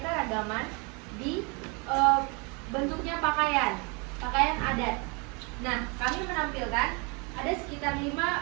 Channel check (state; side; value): quieter; left; 31.4 dB